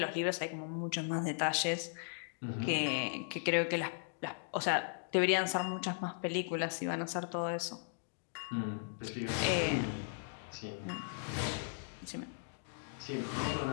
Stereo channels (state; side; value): silent; right; digital silence